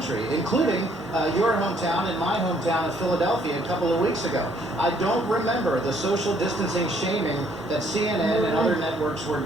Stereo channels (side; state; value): both; normal; correlation 0.65